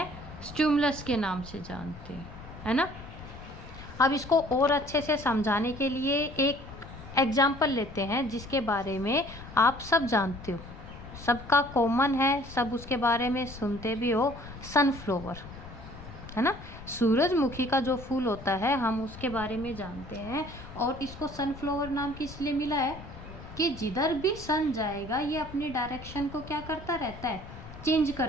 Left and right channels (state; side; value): noise; left; rumble, 15 dB below the sound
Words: स्टिमुलस के नाम से जानते हैं, है ना। अब इसको और अच्छे से समझाने के लिए एक एग्जाम्पल लेते हैं जिसके बारे में आप सब जानते हो, सबका कॉमन है, सब उसके बारे में सुनते भी हो, सनफ्लावर, है ना। सूरजमुखी का जो फूल होता है हम उसके बारे में जानते हैं, और इसको सनफ्लावर नाम किस लिए मिला है कि जिधर भी सन जाएगा ये अपनी डायरेक्शन को क्या करता रहता है, चेंज